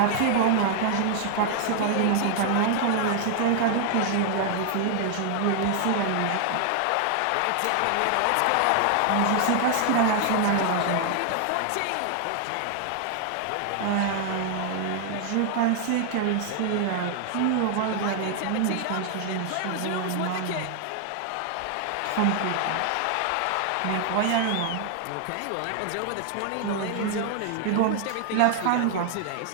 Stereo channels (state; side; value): different; both; correlation 0.00